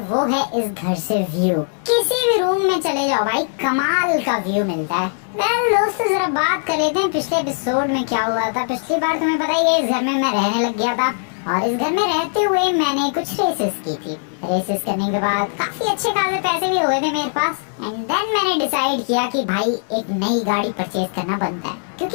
है इस घर से व्यू। किसी भी रूम में चले जाओ भाई, कमाल का व्यू मिलता है। वेल दोस्तों, जरा बात कर लेते हैं पिछले एपिसोड में क्या हुआ था। पिछली बार तुम्हें पता ही है, इस घर में मैं रहने लग गया था और इस घर में रहते हुए मैंने कुछ रेसेस की थी। रेसेस करने के बाद काफी अच्छे खासे पैसे भी हो गए थे मेरे पास। एंड देन मैंने डिसाइड किया कि भाई एक नई गाड़ी परचेज करना बनता है,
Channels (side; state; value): right; silent; 59 dB below the other